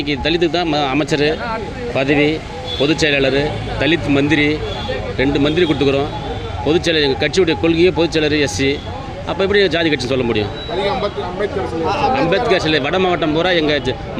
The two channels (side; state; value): both; identical; correlation 1.00